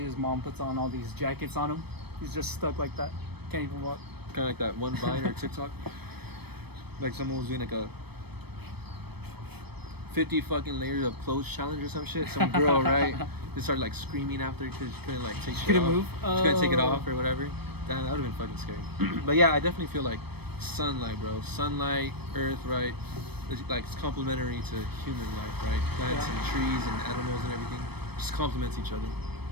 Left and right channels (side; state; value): left; late; 0.97 ms